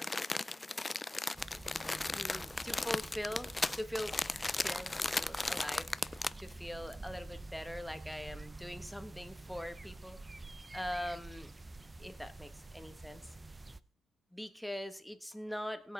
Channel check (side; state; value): both; normal; correlation 0.98